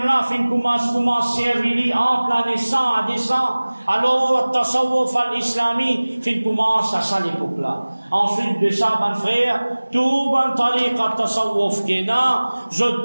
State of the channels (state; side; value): inverted; both; correlation -1.00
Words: fin commence servir entre la naissance à descend. Alors, tasawwuf al-islami, fin commence à ça l'époque-là. Ensuite de ça, ban frère, tout ban tariqa tasawwuf qui est là, je